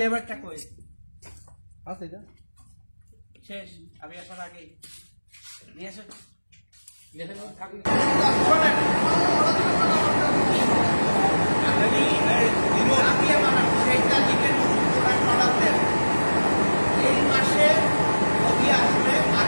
কই আছে এটা শেষ আমি আসার আগে নিয়ে আসো এই মাসে নদী আসবে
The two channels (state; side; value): inverted; both; correlation -1.00